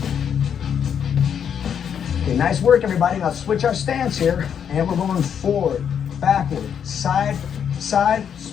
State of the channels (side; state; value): right; quieter; 8.0 dB